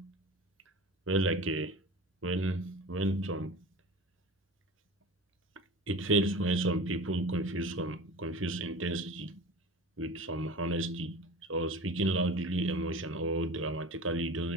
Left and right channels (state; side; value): normal; both; correlation 0.35